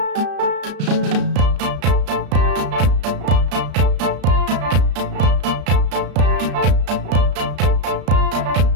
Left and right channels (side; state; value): left; late; 34 ms